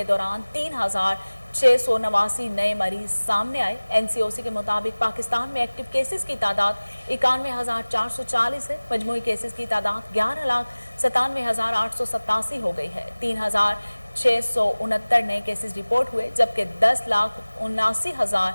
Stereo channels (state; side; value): inverted; both; correlation -1.00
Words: दौरान 3,689 नए मरीज सामने आए। NCOC के मुताबिक पाकिस्तान में एक्टिव केसेस की तादाद 91,440 है। मजमूई केसेस की तादाद 11,97,887 हो गई है। 3,669 नए केसेस रिपोर्ट हुए, जबकि